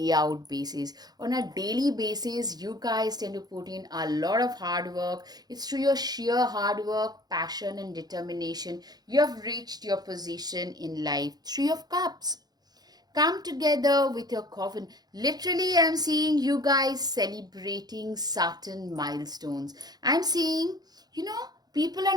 out basis. On a daily basis, you guys tend to put in a lot of hard work. It's through your sheer hard work, passion, and determination you have reached your position in life. Three of Cups, come together with your coven. Literally, I'm seeing you guys celebrating certain milestones. I'm seeing, you know, people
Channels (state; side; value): late; left; 0.19 ms